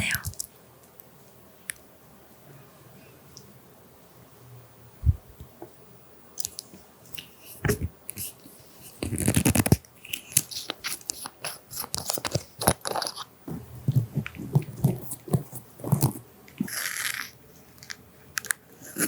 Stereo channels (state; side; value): identical; both; correlation 1.00